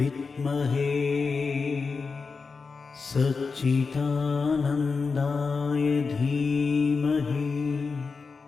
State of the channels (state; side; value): quieter; right; 4.7 dB